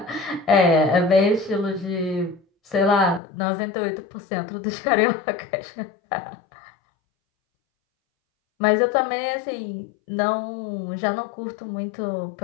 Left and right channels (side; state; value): right; drops out; at 3.2 s